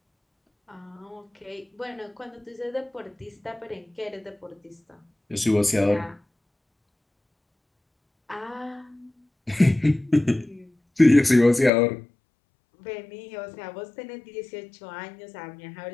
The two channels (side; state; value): right; drops out; at 11.7 s